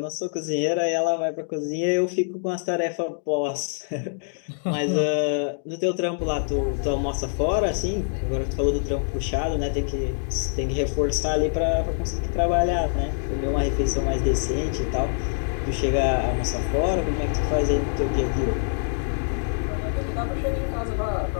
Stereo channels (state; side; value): silent; right; digital silence